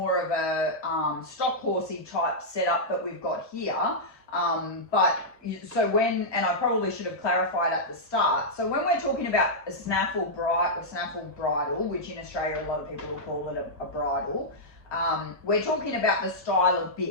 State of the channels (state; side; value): late; right; 1.2 ms